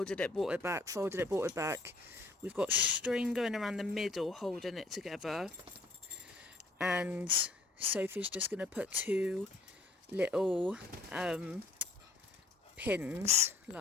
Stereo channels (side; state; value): right; quieter; 3.3 dB